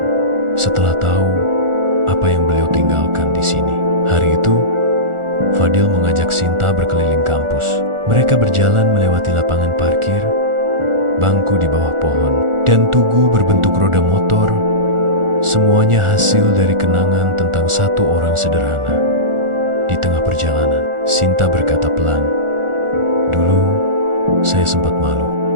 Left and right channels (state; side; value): late; left; 1.4 ms